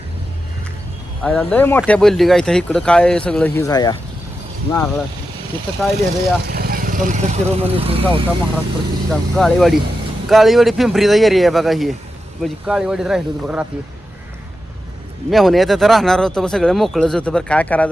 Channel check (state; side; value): normal; both; correlation 0.89